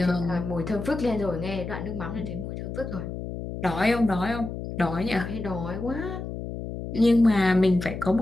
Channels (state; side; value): noise; left; hum, 7 dB below the sound